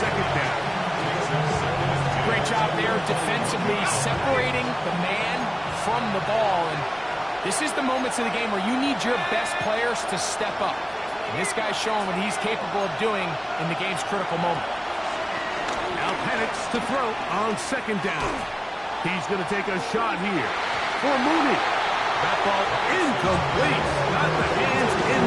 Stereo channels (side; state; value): both; identical; correlation 1.00